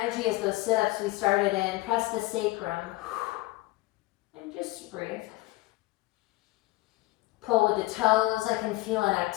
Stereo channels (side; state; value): right; quieter; 20.0 dB